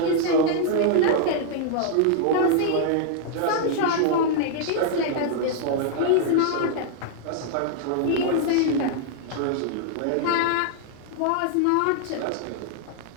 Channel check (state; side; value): different; both; correlation -0.01